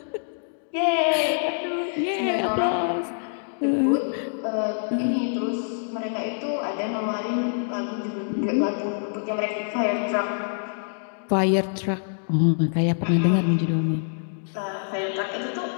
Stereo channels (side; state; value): right; silent; digital silence